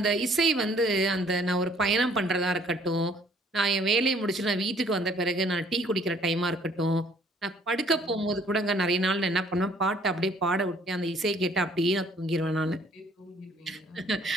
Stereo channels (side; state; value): both; normal; correlation 0.60